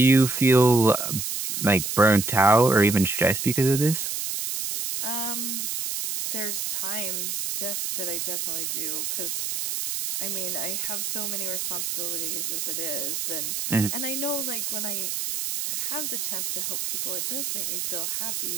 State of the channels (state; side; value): noise; right; hiss, 2 dB below the sound